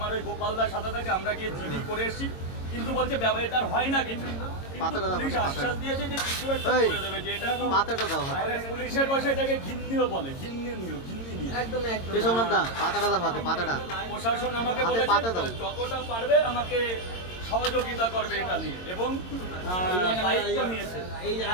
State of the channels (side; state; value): right; late; 22 ms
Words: ওই গোপালদার সাথে থাকে, আমরা গিয়ে জিডি করে এসেছি, কিন্তু বলছে ব্যবহার হয় না কিছু। পুলিশ আশ্বাস দিয়েছে যে কিছু একটা করে দেবে, যে এটা পুলিশের ভাষায় এটাকে ঘিন্নিও বলে, ঘিন্নি একদম একদম। প্রশাসন আমাকে বলেছে যতটা পারবে আমাকে সহযোগিতা করবে এটা নিয়ে, এবং দায়িত্ব নিয়েছে এই